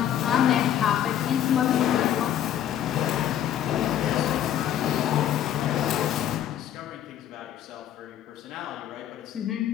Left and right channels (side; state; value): right; quieter; 10.7 dB